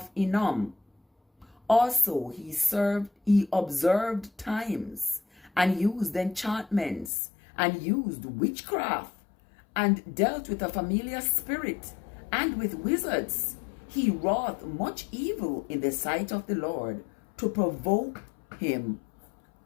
Hinnom. Also he observed times, and used enchantments, and used witchcraft, and dealt with a familiar spirit, and with wizards. He wrought much evil in the sight of the Lord, to provoke him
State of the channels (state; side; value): drops out; right; at 7.1 s